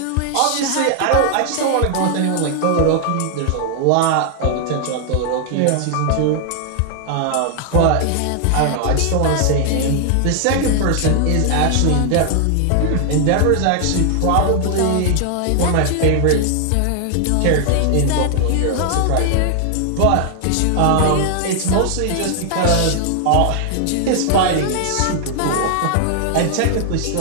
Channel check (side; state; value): both; different; correlation 0.00